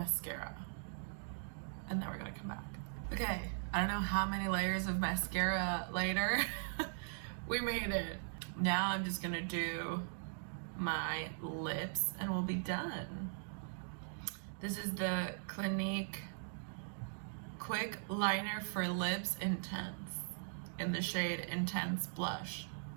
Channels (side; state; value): left; silent; digital silence